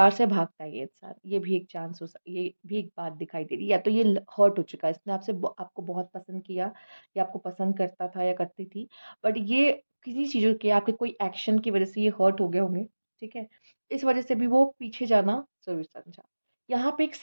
से भागता है ये इंसान। ये भी एक चांस ये भी एक बात दिखाई दे रही है। या तो ये हर्ट हो चुका है, इसने आपको बहुत पसंद किया, या आपको पसंद करता था या करती थी, बट ये किसी चीज़ों के आपके कोई एक्शन की वजह से ये हर्ट हो गए होंगे, ठीक है। इस वजह से भी वो पीछे जाना जरूर समझा। यहाँ पे एक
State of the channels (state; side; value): inverted; both; correlation -1.00